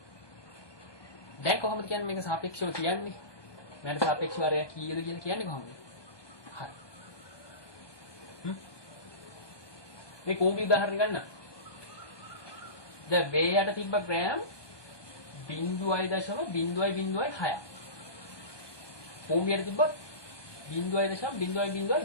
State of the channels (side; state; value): right; late; 1.2 ms